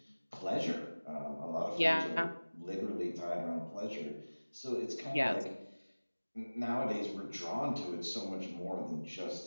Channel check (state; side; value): inverted; both; correlation -1.00